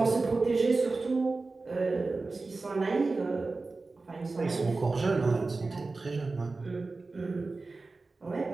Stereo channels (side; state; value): left; quieter; 3.7 dB